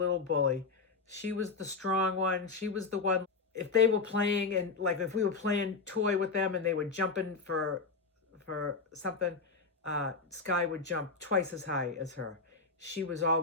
bully. She was the strong one. She was the one. If they were playing, and like if we were playing toy with them and they were jumping for something, Sky would jump twice as high as her. She was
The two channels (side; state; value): right; quieter; 4.3 dB